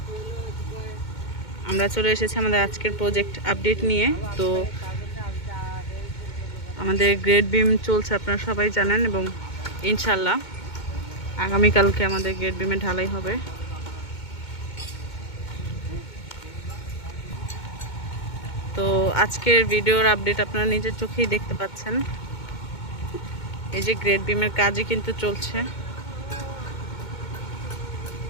আমরা চলে এসেছি আমাদের আজকের প্রজেক্ট আপডেট নিয়ে। তো আমাদের গ্রেড বিম চলছে, আপনারা সবাই জানেন, এবং ইনশাল্লাহ আগামীকালকে আমাদের গ্রেড বিমে ঢালাই হবে। তো আজকের ভিডিওর আপডেট আপনারা নিজের চোখেই দেখতে পাচ্ছেন। এই যে গ্রেড বিমের কাজই কিন্তু চলছে।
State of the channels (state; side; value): late; right; 2.2 ms